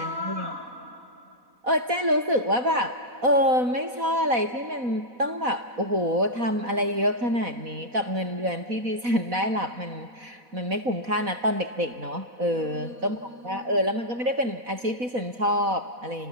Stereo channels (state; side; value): late; left; 4.1 ms